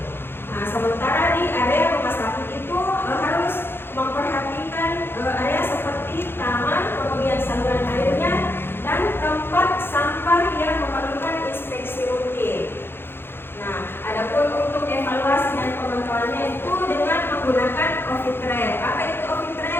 Nah, sementara di area rumah sakit itu harus memperhatikan area seperti taman, kemudian saluran airnya dan tempat sampah yang memerlukan inspeksi rutin. Nah, adapun untuk evaluasi dan pemantauannya itu dengan menggunakan office trail. Apa itu office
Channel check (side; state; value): right; late; 0.11 ms